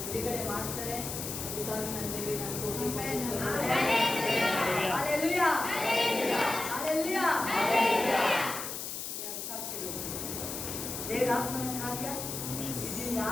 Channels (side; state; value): left; noise; hiss, 6 dB below the sound